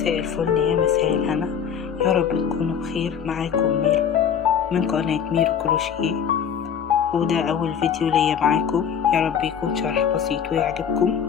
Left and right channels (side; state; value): right; quieter; 7.8 dB